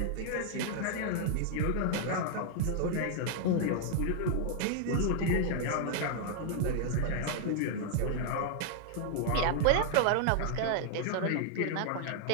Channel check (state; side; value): different; both; correlation 0.00